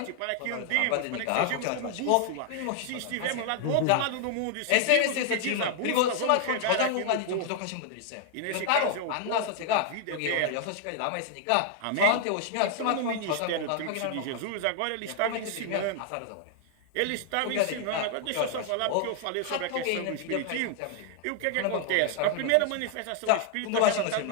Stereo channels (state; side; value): different; both; correlation 0.00